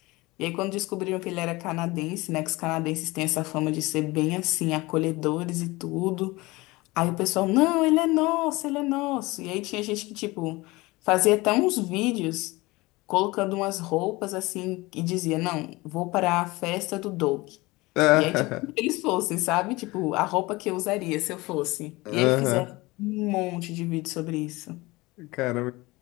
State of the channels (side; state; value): right; quieter; 21.9 dB